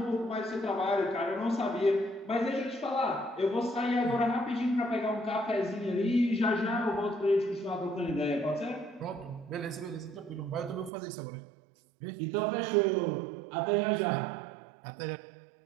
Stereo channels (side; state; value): left; drops out; at 10.9 s